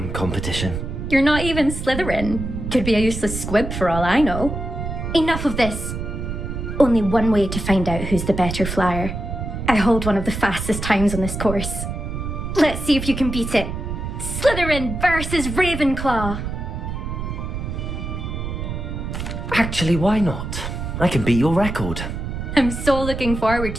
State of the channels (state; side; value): noise; right; rumble, 5 dB below the sound